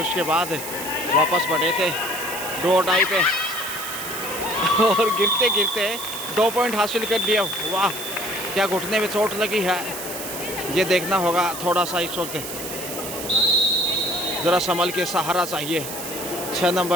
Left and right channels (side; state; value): right; noise; hiss, 8 dB below the sound